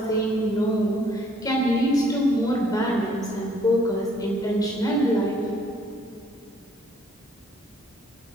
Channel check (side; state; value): both; normal; correlation 0.63